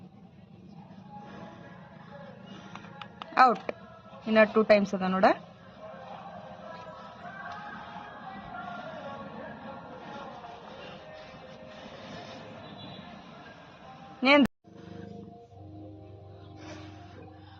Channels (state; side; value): identical; both; correlation 1.00